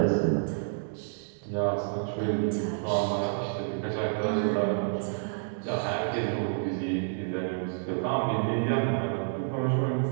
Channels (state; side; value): silent; left; digital silence